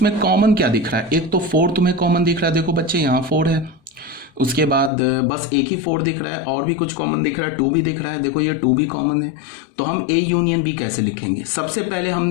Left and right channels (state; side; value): drops out; right; at 4.9 s